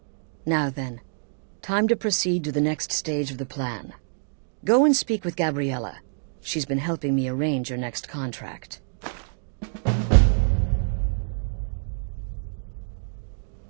Now then, time to proceed to the next stage of the plan. Go and speak with Gabriella. She's been helping me arrange your next contract.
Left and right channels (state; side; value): silent; left; digital silence